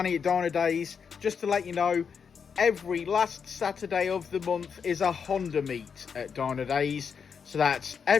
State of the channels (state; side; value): quieter; right; 6.5 dB